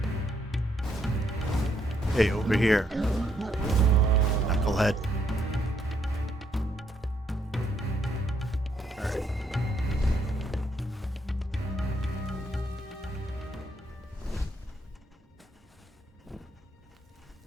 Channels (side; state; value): both; normal; correlation 0.73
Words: Hey, over here. Knucklehead. Alright.